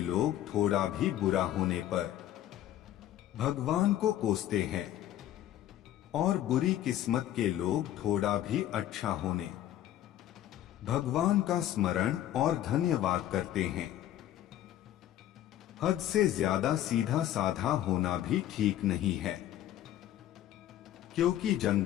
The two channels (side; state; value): right; quieter; 12.5 dB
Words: लोग थोड़ा भी बुरा होने पर भगवान को कोसते हैं, और बुरी किस्मत के लोग थोड़ा भी अच्छा होने भगवान का स्मरण और धन्यवाद करते हैं। हद से ज्यादा सीधा साधा होना भी ठीक नहीं है, क्योंकि